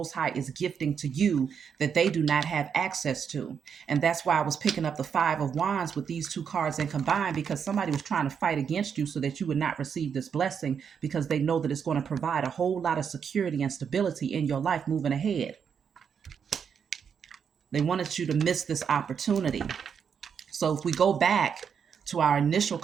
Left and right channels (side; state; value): left; quieter; 7.1 dB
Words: High is gifting to you that they do not have access to. And that's why I was picking up the Five of Wands with these two cards and combined, because somebody was trying to fight against you so that you would not receive this blessing, because they know that it's going to provide a whole lot of security and stability in your life moving ahead. They wanted you to miss this opportunity. So if we go back to our initial